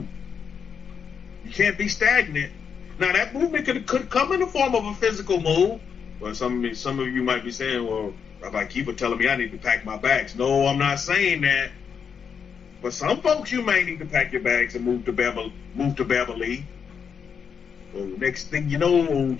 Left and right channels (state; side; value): quieter; right; 6.8 dB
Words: You can't be stagnant. Now, that movement could come in the form of a physical move. Well, some of you might be saying, well, Rabbi Kefa telling me I need to pack my bags. No, I'm not saying that. But some folks, you may need to pack your bags and move to Beverly. Well, next thing you know,